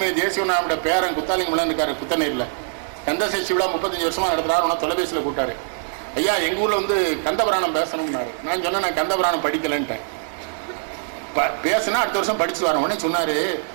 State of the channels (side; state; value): left; silent; digital silence